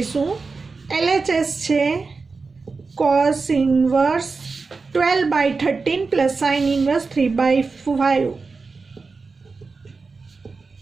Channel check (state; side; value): quieter; left; 4.3 dB